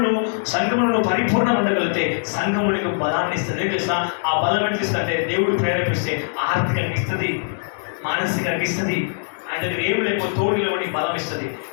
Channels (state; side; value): silent; right; digital silence